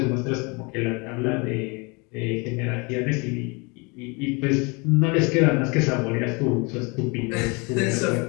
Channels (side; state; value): right; quieter; 29.3 dB